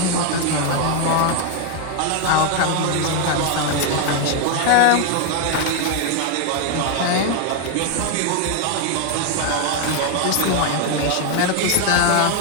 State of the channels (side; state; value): both; different; correlation 0.01